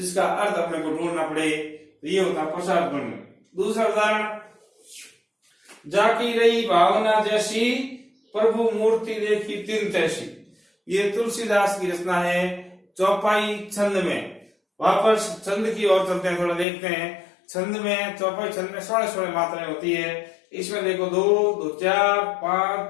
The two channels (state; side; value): drops out; right; at 16.7 s